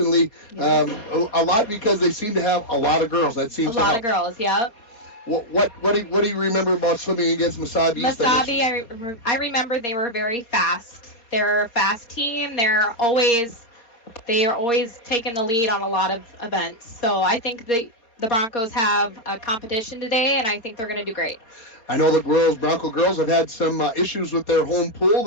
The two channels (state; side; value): late; right; 4.3 ms